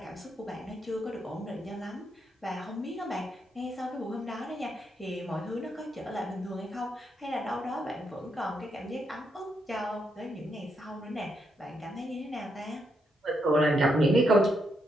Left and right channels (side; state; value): both; normal; correlation 0.79